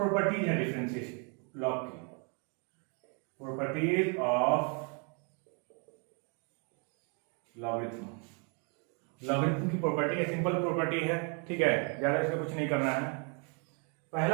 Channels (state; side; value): quieter; left; 37.2 dB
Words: है डिफरेंशिएशन लॉग की, प्रॉपर्टीज ऑफ लॉगरिथम। लॉगरिथम की प्रॉपर्टी है, सिंपल प्रॉपर्टी है। ठीक है, ज्यादा इसमें कुछ नहीं करना है।